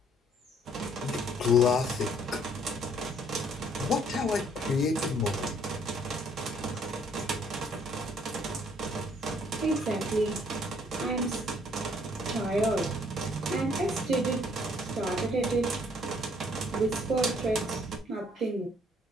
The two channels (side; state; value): both; normal; correlation 0.63